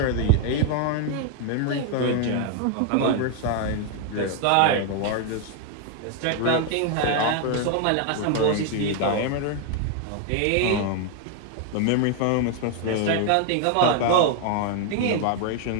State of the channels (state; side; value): different; both; correlation 0.00